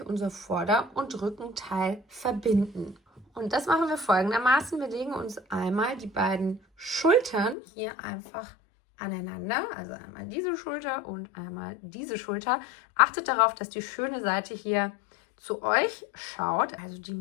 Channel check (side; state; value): right; drops out; at 7.6 s